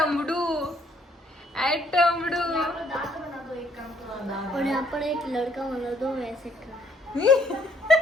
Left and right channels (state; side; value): normal; both; correlation 0.66